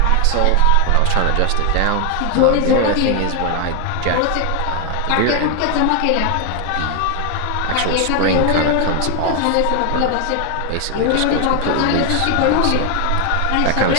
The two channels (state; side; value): different; both; correlation 0.01